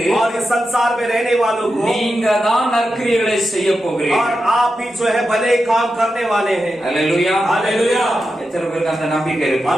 और इस संसार में रहने वालों को நீங்க தான் நற்கிரியைகளை செய்ய और போகிறீர்கள். आप ही जो है भले काम करने वाले हैं। அல்லேலூயா. हालेलुया। எத்தனை பேருக்கு அந்த நம்பிக்கை இருக்கு? और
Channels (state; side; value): normal; both; correlation 0.89